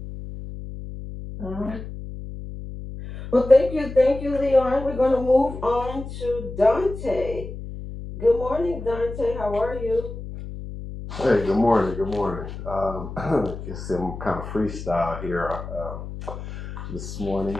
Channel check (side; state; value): left; noise; hum, 10 dB below the sound